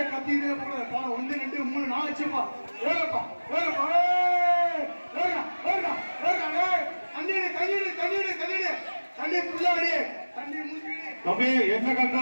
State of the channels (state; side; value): inverted; both; correlation -1.00